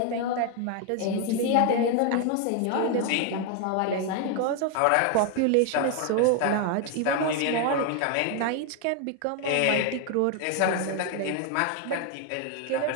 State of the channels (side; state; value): both; different; correlation 0.01